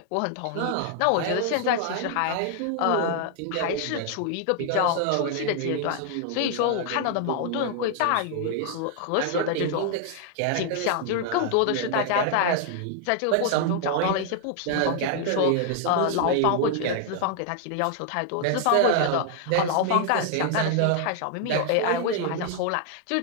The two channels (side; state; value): both; different; correlation 0.00